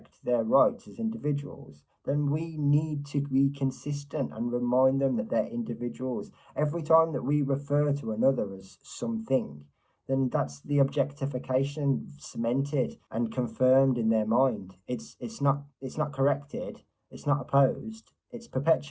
their rights as individuals, then we need to be consistent and remind them that they're individuals. Every time that we refer to another as something, then that's the objectification cemented and confirmed in their mind. It's not corrected, it's not opposed, it's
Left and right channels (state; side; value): identical; both; correlation 1.00